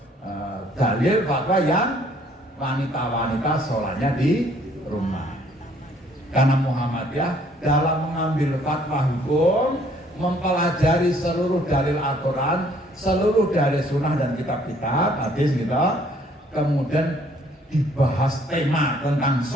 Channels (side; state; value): both; normal; correlation 0.62